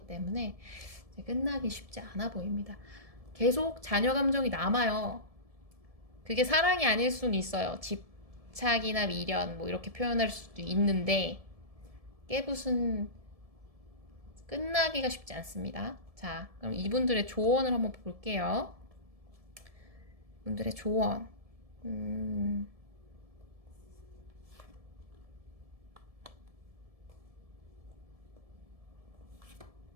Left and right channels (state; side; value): late; left; 1.7 ms